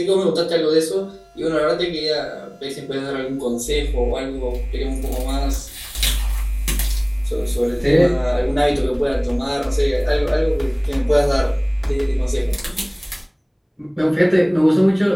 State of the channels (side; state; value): both; identical; correlation 1.00